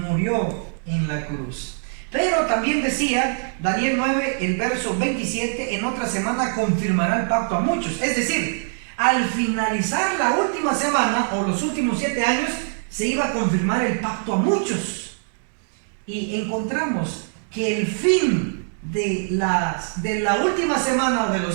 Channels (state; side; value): silent; left; 63 dB below the other